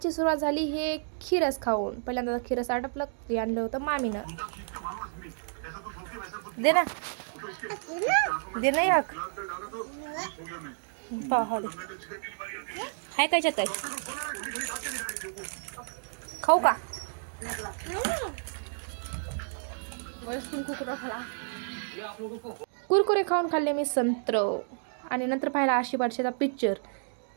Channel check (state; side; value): silent; left; digital silence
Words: सुरुवात झाली हे खीरस खाऊन. पहिल्यांदा खीरस आटपलं, ते आणलं होतं मामीनं. दे ना, दे ना एक पाहा दे. हाय काय काय खाऊ का? कुरकुरे खाऊन खाल्ले मी संत्र. आणि नंतर पाहिला आशी पारशीचा पिक्चर,